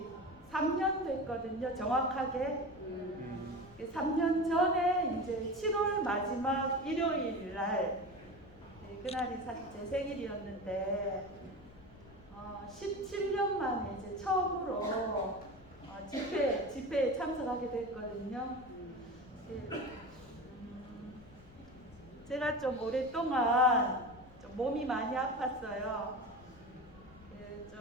3년 됐거든요. 정확하게. 3년 전에 이제 7월 마지막 일요일 날 그날이 사실 제 생일이었는데 17년 만에 이제 처음으로 집회에 참석하게 됐거든요. 제가 좀 오랫동안 좀 몸이 많이 아팠어요.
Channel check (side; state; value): left; noise; rumble, 22 dB below the sound